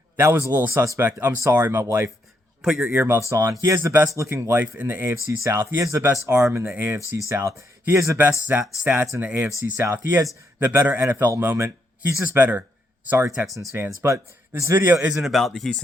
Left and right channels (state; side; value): normal; both; correlation 0.77